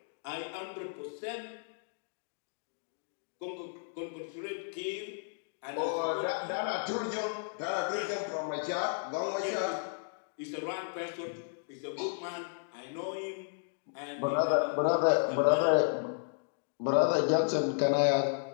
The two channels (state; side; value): silent; right; digital silence